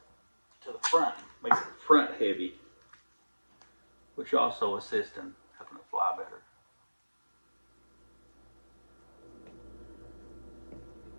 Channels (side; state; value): both; inverted; correlation -1.00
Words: to the front. Makes it front heavy, which also assists in helping it fly better.